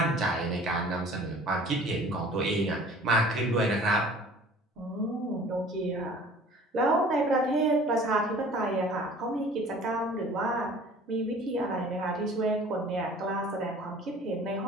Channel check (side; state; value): both; normal; correlation 0.48